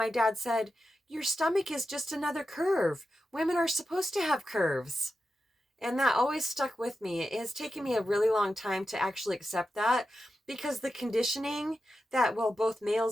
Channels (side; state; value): both; normal; correlation 0.90